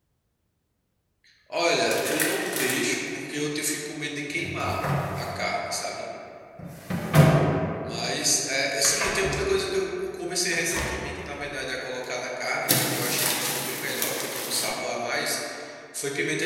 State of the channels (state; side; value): identical; both; correlation 1.00